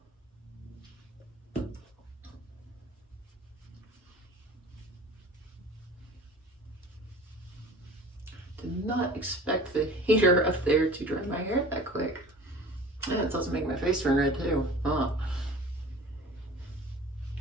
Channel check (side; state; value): both; normal; correlation 0.42